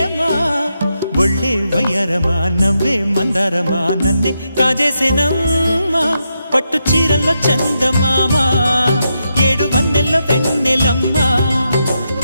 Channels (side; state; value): both; inverted; correlation -0.84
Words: ఒళ్ళే వయ్యారమా నవ్వే మందారమా నన్నే కాజేసేనమ్మా పట్టు చీరల్లో చందమామా ఏడు వన్నెల్లో పెన్నెలమ్మా